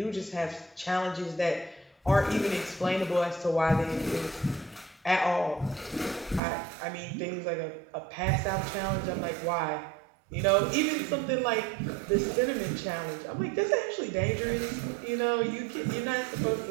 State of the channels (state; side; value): drops out; left; at 6.4 s